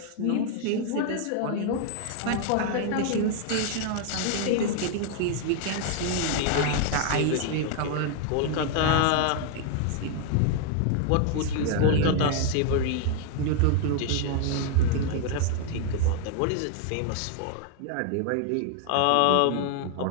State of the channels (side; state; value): both; different; correlation 0.00